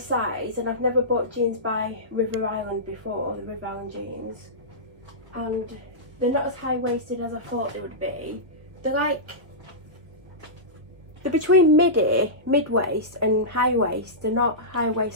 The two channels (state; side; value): late; left; 1.1 ms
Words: and I've never bought jeans by River Island before, the River Island jeans, and they're not as high-waisted as I thought they would be. They're between mid-waist and high-waist. They're not